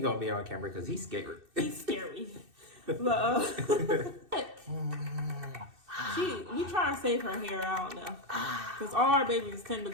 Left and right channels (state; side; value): late; left; 2.6 ms